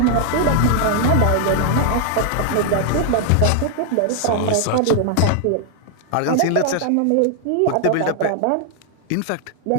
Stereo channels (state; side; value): different; both; correlation 0.00